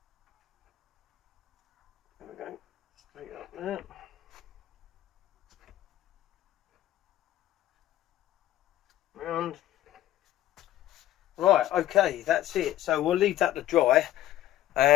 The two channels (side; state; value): right; quieter; 13.7 dB